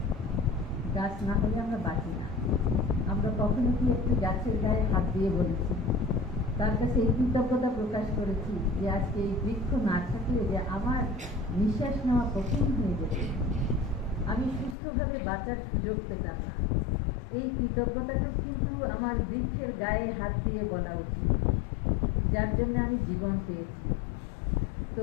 গাছ না হলে আমরা বাঁচি না। আমরা কখনো কি একটু গাছের গায়ে হাত দিয়ে বলেছি, তার কাছে এই কৃতজ্ঞতা প্রকাশ করেছি যে আজকে এই বৃক্ষ না থাকলে যে আমার নিঃশ্বাস নেওয়া কঠিন হয়ে যেত, আমি সুস্থভাবে বাঁচার সুযোগ পেতাম না। এই কৃতজ্ঞতাটা কিন্তু আমার বৃক্ষের গায়ে হাত দিয়ে বলা উচিত, যার জন্য আমি জীবন পেয়েছি। তো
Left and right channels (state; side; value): drops out; right; at 14.8 s